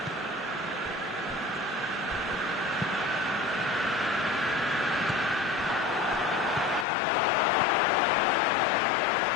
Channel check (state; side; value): drops out; right; at 6.9 s